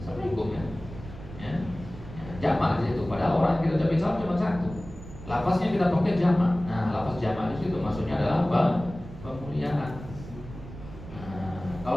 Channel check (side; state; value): right; noise; rumble, 14 dB below the sound